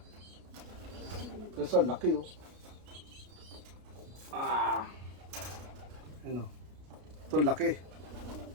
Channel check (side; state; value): left; late; 33 ms